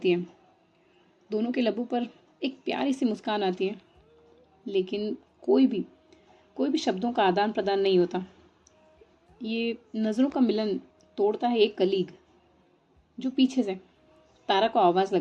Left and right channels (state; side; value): identical; both; correlation 1.00